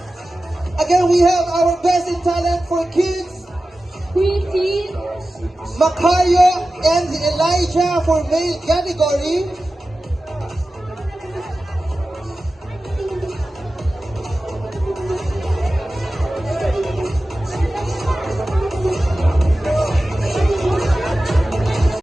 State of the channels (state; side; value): normal; both; correlation 0.95